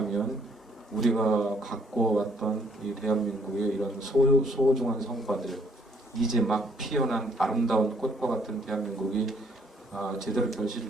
우리가 갖고 왔던 이 대한민국의 이런 소중한 성과들, 이제 막 피어난 아름다운 꽃과 같은 대한민국이 제대로 결실을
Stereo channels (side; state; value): both; normal; correlation 0.66